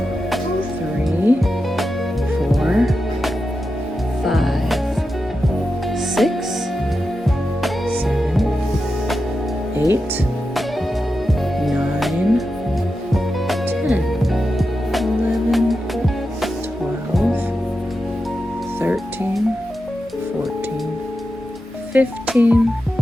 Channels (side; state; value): both; normal; correlation 0.90